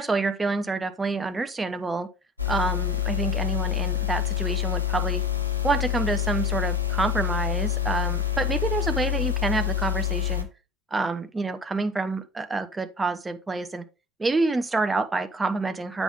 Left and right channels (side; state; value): both; normal; correlation 0.40